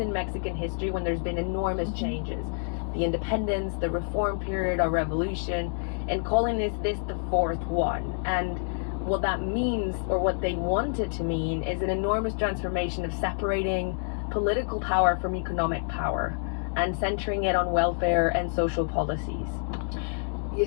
Mexican history when there's been enormous changes. The independence, the reform period, our revolution, and calling this the fourth one. And what that means, or what they wanted to mean, is an enormous transformation of separating political power from economic power and centering it on welfare and social policies.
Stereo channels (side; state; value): right; silent; digital silence